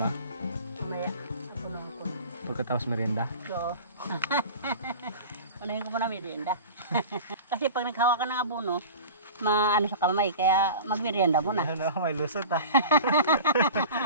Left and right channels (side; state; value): both; inverted; correlation -0.36